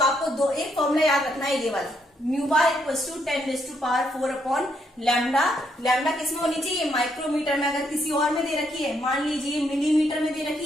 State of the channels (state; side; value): normal; both; correlation 0.74